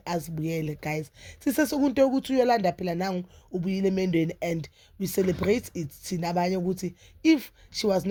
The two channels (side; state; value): both; identical; correlation 1.00